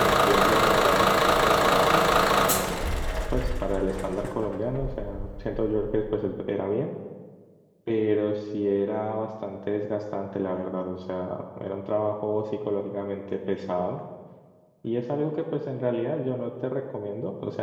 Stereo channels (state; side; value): identical; both; correlation 1.00